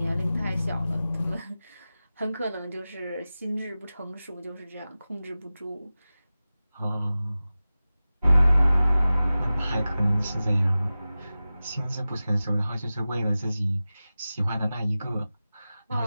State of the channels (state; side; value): inverted; both; correlation -0.96